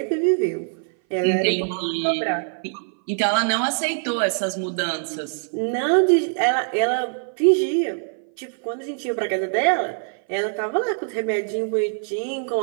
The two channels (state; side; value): silent; left; 58 dB below the other